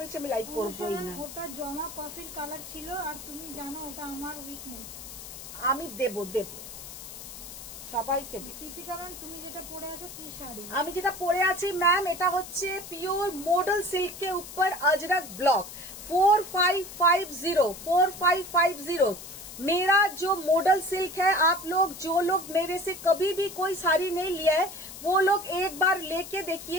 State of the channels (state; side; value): noise; left; hiss, 12 dB below the sound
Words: বেশি আমি লাইভ করবোই না। ওটা জমা কফির কালার ছিল, আর তুমি জানো ওটা আমার উইকনেস। আমি দেব সবাইকে দেব। দীপিকা ম্যাম তুমি যেটা পরে আছো কি শাড়ি? আমি যেটা পরে আছি ম্যাম, এটা হচ্ছে পিওর মডেল सिल्क के ऊपर अजरक ब्लॉक 4550। मेरा जो मॉडल सिल्क है, आप लोग जो लोग मेरे से कभी भी कोई साड़ी नहीं लिया है, वो लोग एक बार लेके